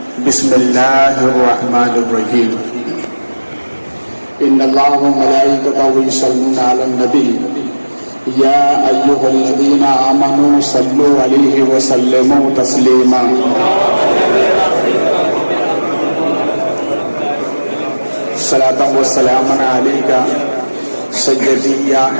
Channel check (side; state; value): both; inverted; correlation -1.00